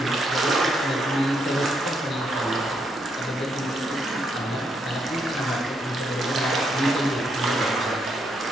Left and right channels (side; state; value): both; normal; correlation 0.77